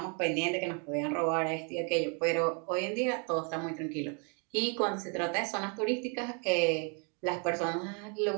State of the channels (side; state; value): left; quieter; 37.1 dB